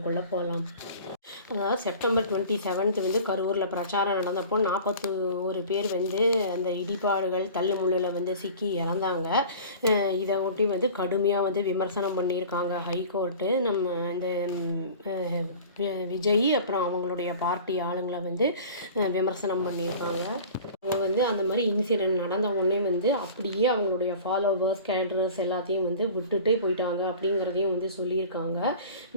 போகலாம். அதாவது செப்டம்பர் 27 கரூரில் பிரச்சாரம் நடந்தப்போ 41 பேர் அந்த இடிபாடுகள் தள்ளுமுள்ளில் சிக்கி இறந்தாங்க. இதை ஒட்டி கடுமையாக விமர்சனம் பண்ணியிருக்காங்க ஹைகோர்ட்டு. நம்ம இந்த விஜய் அப்புறம் அவங்களுடைய பார்ட்டி ஆளுங்களை விமர்சனம் பண்ணியிருக்காங்க. அவங்க அந்த மாதிரி இன்சிடெண்ட் நடந்த உடனே அப்படியே அவங்களுடைய ஃபாலோவர்ஸ் கேடரர்ஸ் எல்லாத்தையும் விட்டுட்டே போயிட்டாங்க அப்படிங்கிறதையும் சொல்லியிருக்காங்க.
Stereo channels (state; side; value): inverted; both; correlation -0.41